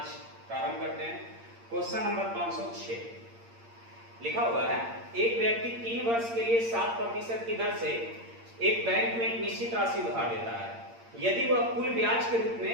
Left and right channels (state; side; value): late; left; 8.7 ms